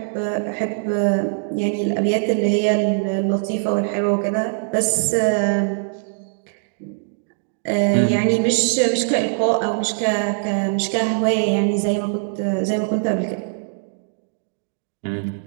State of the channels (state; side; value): silent; left; digital silence